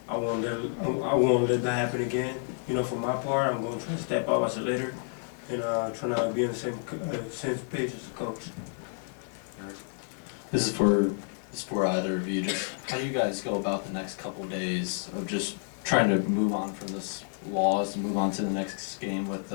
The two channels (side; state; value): right; silent; 58 dB below the other